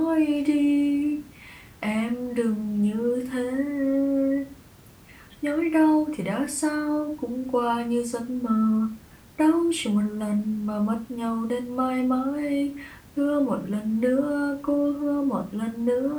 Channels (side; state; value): both; identical; correlation 1.00